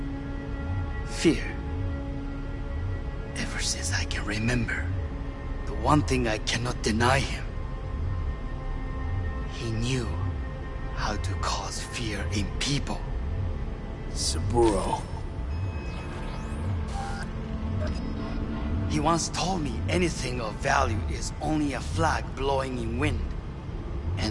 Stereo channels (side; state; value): both; identical; correlation 1.00